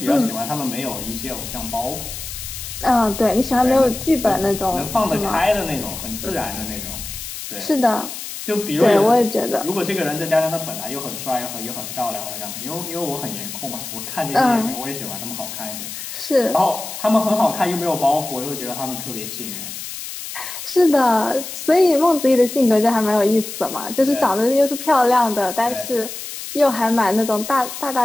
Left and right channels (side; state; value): left; noise; hiss, 9 dB below the sound